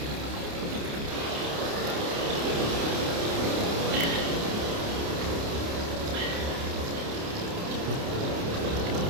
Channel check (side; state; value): left; late; 29 ms